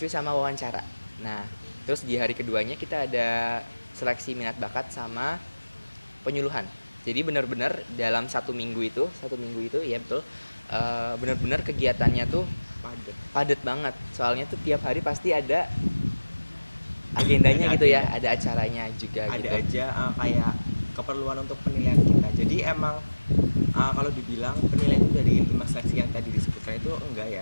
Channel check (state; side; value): inverted; both; correlation -1.00